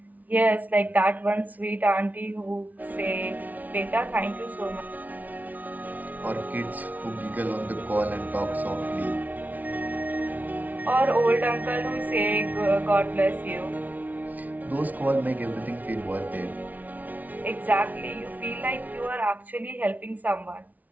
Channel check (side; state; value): left; late; 0.075 ms